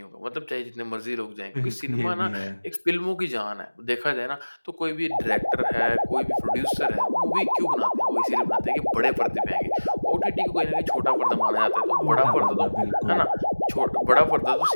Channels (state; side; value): inverted; both; correlation -1.00